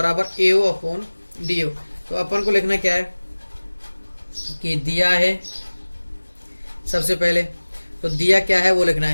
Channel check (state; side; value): inverted; both; correlation -1.00